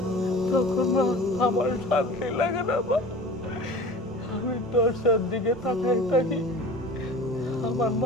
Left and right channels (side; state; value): both; normal; correlation 0.39